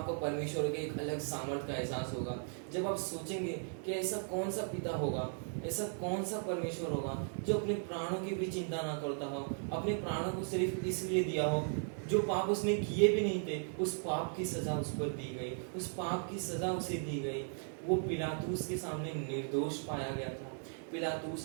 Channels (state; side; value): silent; left; 53 dB below the other